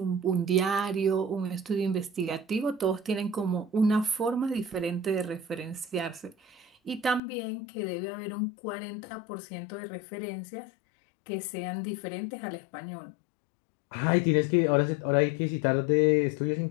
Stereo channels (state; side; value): drops out; right; at 7.2 s